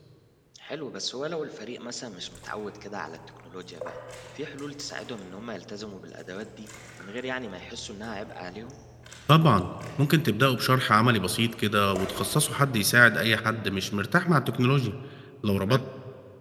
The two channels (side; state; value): both; identical; correlation 1.00